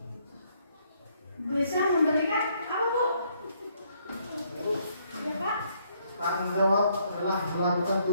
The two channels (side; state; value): both; inverted; correlation -0.70